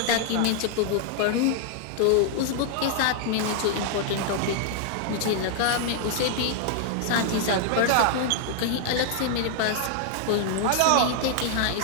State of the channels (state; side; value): different; both; correlation 0.00